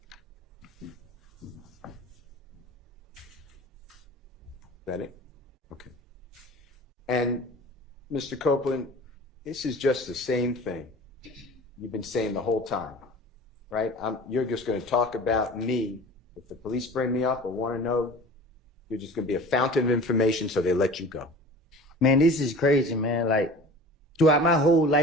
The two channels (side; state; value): both; normal; correlation 0.40